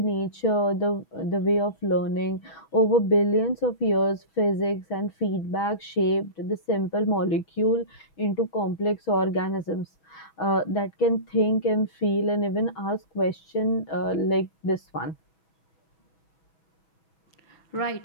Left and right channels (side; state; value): right; late; 6.2 ms